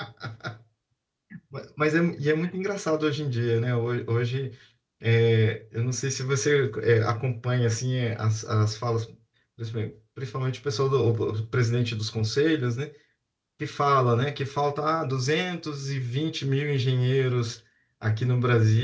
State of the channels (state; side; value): identical; both; correlation 1.00